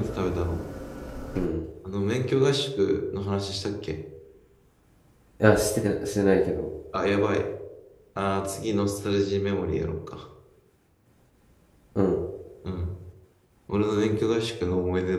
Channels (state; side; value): identical; both; correlation 1.00